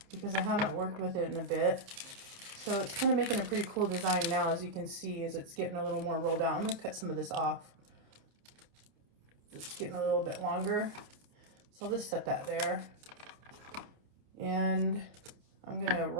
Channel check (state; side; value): late; left; 28 ms